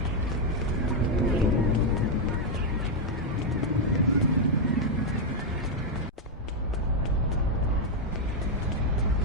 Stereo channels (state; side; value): normal; both; correlation 0.00